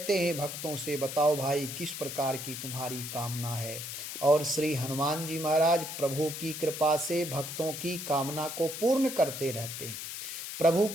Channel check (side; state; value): left; noise; hiss, 7 dB below the sound